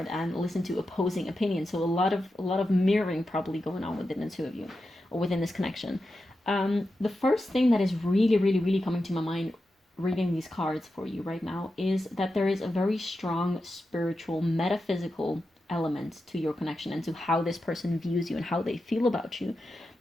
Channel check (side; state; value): both; normal; correlation 0.90